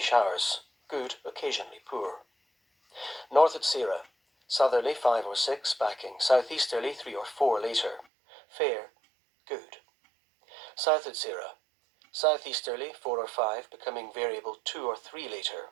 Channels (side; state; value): left; drops out; at 8.1 s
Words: good, occasionally poor. North at Sierra, southerly 5 or 6, backing southeasterly 3 or 4 later. Fair, good. South at Sierra, southeasterly 4 or 5, becoming variable 2 or 3